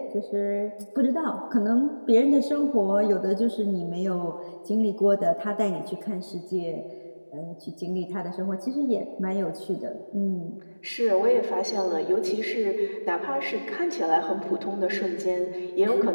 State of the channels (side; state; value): both; inverted; correlation -1.00